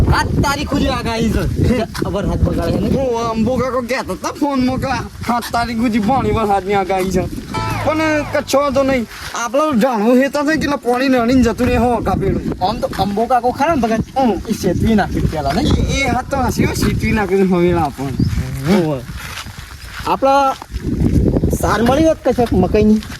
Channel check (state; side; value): identical; both; correlation 1.00